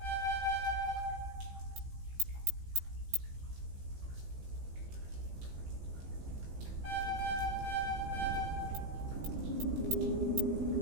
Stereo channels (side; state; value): left; late; 16 ms